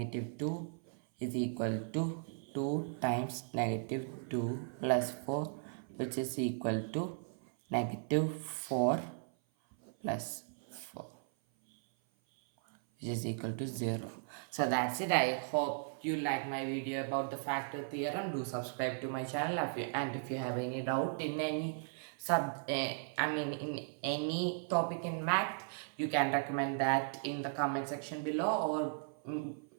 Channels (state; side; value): silent; left; 53 dB below the other